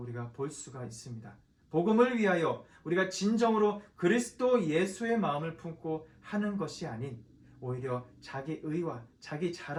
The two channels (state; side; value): identical; both; correlation 1.00